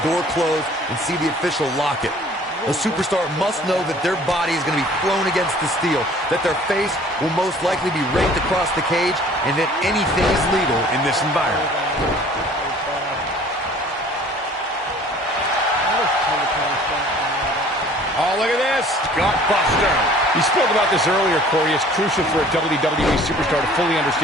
door close and see the official lock it. A superstar must know that their body is going to be thrown against the steel, that their face will most likely be raked across the cage, and that anything is legal in this environment. Oh, look at this. Gutbuster. You spoke about this earlier, Corey. It's crucial for a WWE superstar to fully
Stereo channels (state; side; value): normal; both; correlation 0.51